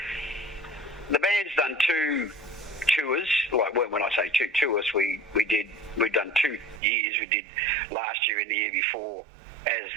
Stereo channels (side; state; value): left; drops out; at 6.8 s